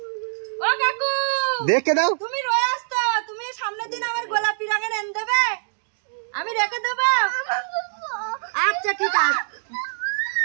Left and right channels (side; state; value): left; silent; digital silence